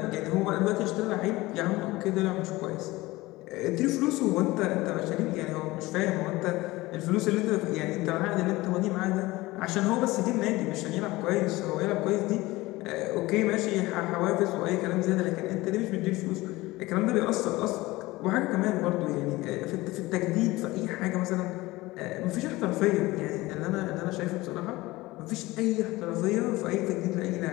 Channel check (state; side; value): quieter; right; 19.8 dB